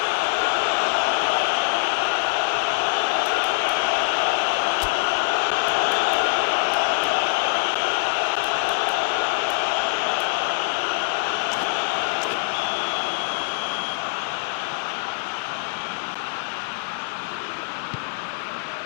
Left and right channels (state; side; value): silent; right; 56 dB below the other